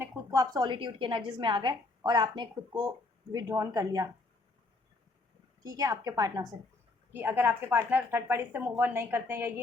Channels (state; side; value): quieter; right; 3.3 dB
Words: खुद को, आप सॉलिट्यूड की एनर्जीज में आ गए और आपने खुद को विड्रॉन कर लिया, ठीक है, आपके पार्टनर से। कि अगर आपके पार्टनर थर्ड पार्टी से मूव ऑन नहीं करते हैं या